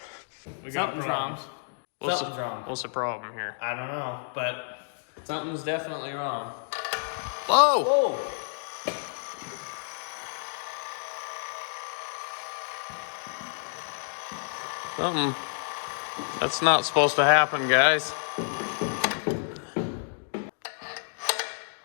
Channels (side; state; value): right; silent; digital silence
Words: We got Something's problems. wrong. Something's wrong. What's the problem here? I don't know, but something's definitely wrong. Whoa! Whoa! Something. That's not supposed to happen, guys.